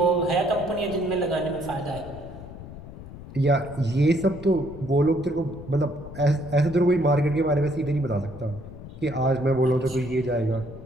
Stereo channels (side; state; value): left; noise; rumble, 14 dB below the sound